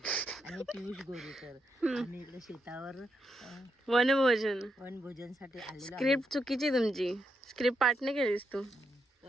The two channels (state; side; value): normal; both; correlation 0.82